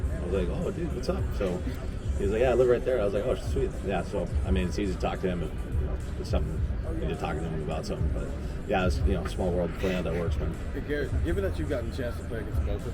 I was like, "Oh dude, what's up?" So he was like, "Yeah, I live right there." I was like, "Oh, sweet." Yeah, so it's easy to talk to him if it's something you need to talk to him about something. But yeah, it's small world, playing how that works, man. Hey Garrett, given that you've gotten a chance to play against both of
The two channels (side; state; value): both; identical; correlation 1.00